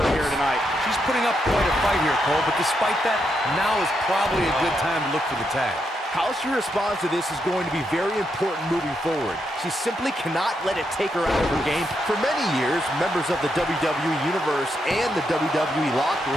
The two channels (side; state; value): both; normal; correlation 0.81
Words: here tonight. She's putting up quite a fight here, Cole, but despite that, now is probably a good time to look for the tag. How she responds to this is going to be very important moving forward. She simply cannot let it take her out of her game. For many years, members of the WWE Universe and the WWE locker